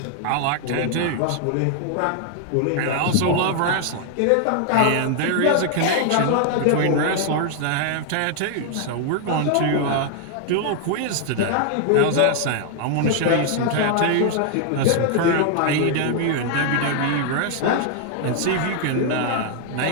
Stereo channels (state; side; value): different; both; correlation 0.00